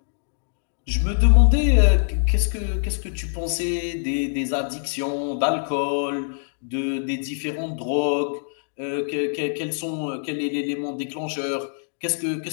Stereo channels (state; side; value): silent; right; digital silence